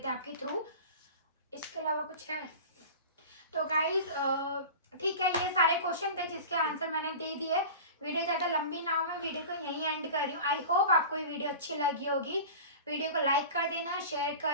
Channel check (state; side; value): inverted; both; correlation -0.34